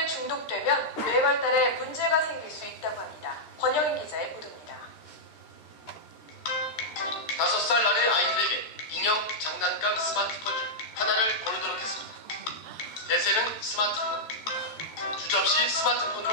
중독되면 뇌 발달에 문제가 생길 수 있다고 합니다. 권영인 기자의 보도입니다. 5살 아래 아이들에게 인형, 장난감, 스마트폰 중 하나를 고르도록 했습니다. 대세는 스마트폰. 주저없이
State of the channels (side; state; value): right; late; 13 ms